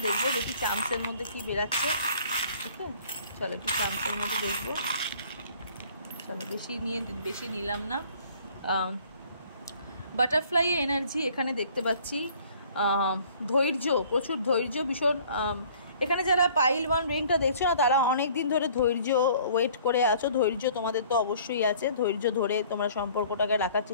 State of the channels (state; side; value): inverted; both; correlation -0.54